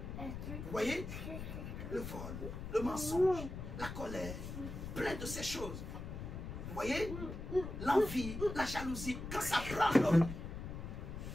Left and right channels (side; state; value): left; noise; rumble, 7 dB below the sound